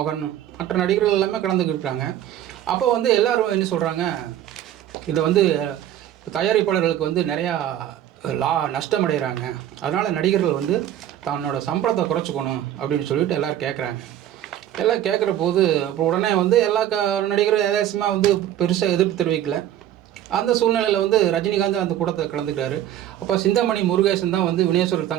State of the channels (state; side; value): quieter; left; 11.6 dB